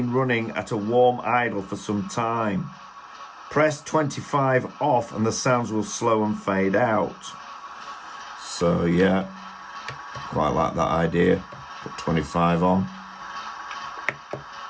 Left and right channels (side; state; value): both; identical; correlation 1.00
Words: running at a warm idle for some time. Press 25 off and the sounds will slow and fade out. So yeah, quite like that idea. Put 25 on.